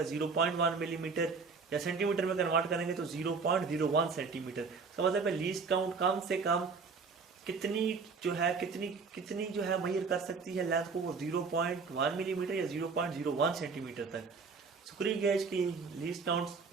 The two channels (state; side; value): quieter; left; 4.8 dB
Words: 0.1 मिलीमीटर, या सेंटीमीटर में कन्वर्ट करेंगे तो 0.01 सेंटीमीटर। इसका मतलब है लीस्ट काउंट कम से कम कितनी जो है मेजर कर सकती है लेंथ को, वो 0.1 मिलीमीटर या 0.01 सेंटीमीटर तक। स्क्रू गेज की लीस्ट काउंट